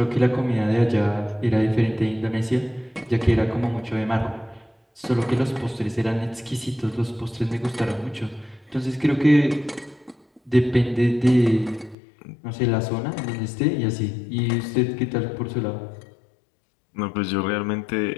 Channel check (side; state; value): right; drops out; at 12.0 s